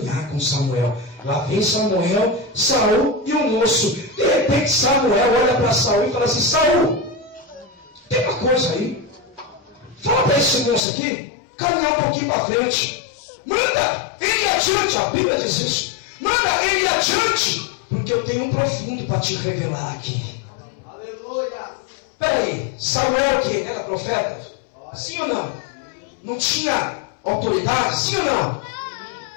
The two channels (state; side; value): drops out; right; at 10.9 s